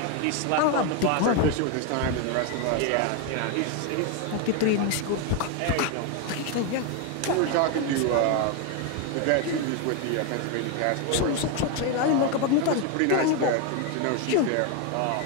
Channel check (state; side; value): different; both; correlation 0.01